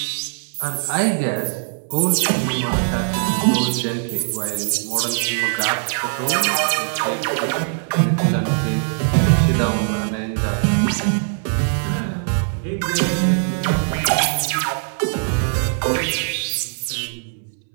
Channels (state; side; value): silent; left; 65 dB below the other